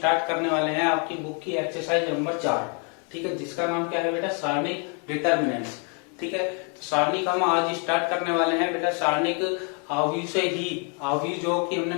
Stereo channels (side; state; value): right; quieter; 38.2 dB